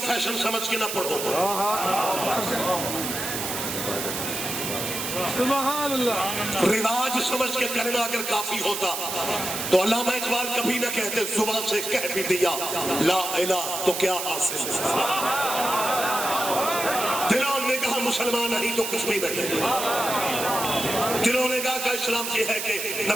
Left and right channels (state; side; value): noise; right; hiss, 4 dB below the sound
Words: فیشن سمجھ کے نہ پڑھو۔ سبحان اللہ. رواج سمجھ کے کلمہ اگر کافی ہوتا تو علامہ اقبال کبھی نہ کہتے زبان سے کہہ بھی دیا لا الہ تو کیا حاصل. دلوں نے کہا مسلمان نہیں تو کچھ بھی نہیں. دلوں نے کہا کہ اسلام یہ ہے کہ